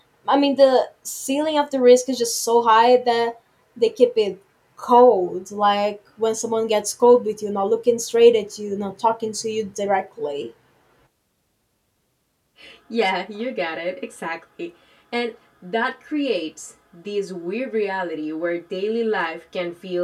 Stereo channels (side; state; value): both; identical; correlation 1.00